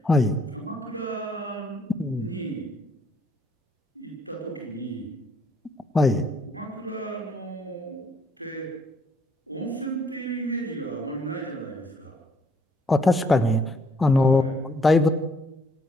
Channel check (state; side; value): normal; both; correlation 0.67